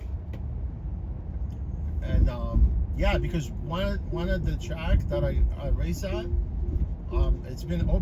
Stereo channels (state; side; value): identical; both; correlation 1.00